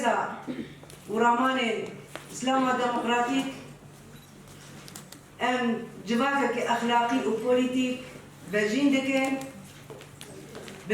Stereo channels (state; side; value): identical; both; correlation 1.00